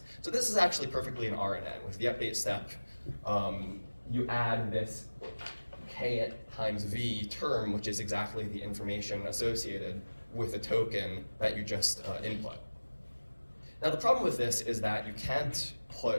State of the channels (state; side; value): inverted; both; correlation -1.00